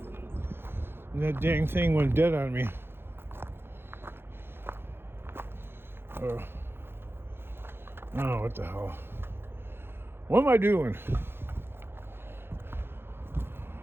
and that dang thing went dead on me. Oh, what the hell? What am I doing?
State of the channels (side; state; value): left; late; 0.11 ms